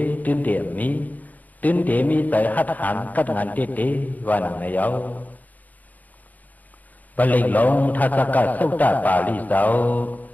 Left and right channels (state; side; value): late; right; 0.080 ms